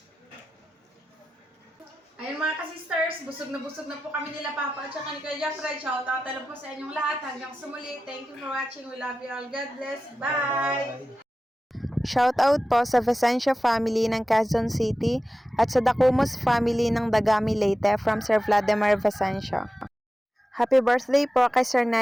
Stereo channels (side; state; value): both; normal; correlation 0.94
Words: Ayun mga ka-sisters, busog na po kami nila Papa at saka ni Kuya Jeffrey. Shoutout na po sa inyong lahat. Hanggang sa muli. Thank you for watching. We love you all. God bless. Bye! Shoutout po sa Vicencio family ng Quezon City at sa Dacumos family ng Dagami Leyte from Sir Vladimir Vicencio. Happy birthday po kay Sir